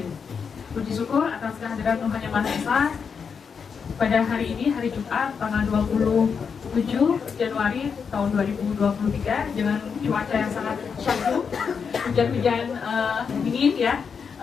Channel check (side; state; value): right; quieter; 6.2 dB